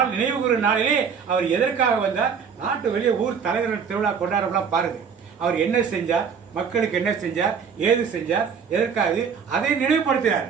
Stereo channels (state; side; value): quieter; left; 6.5 dB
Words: நினைவு கூறும் நாளிலே அவர் எதற்காக வந்தார்? நாட்டு வெளியே ஊர் தலைவர்கள் திருவிழா கொண்டாடலாம் பாருங்க. அவர் என்ன செஞ்சார், மக்களுக்கு என்ன செஞ்சார், ஏது செஞ்சார், எதற்காக அதை நினைவுபடுத்துகிறார்.